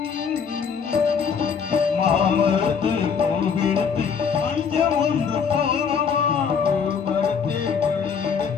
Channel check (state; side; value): quieter; right; 6.5 dB